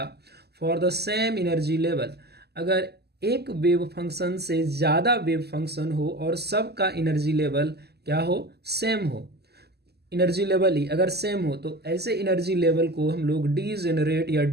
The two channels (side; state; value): left; late; 0.47 ms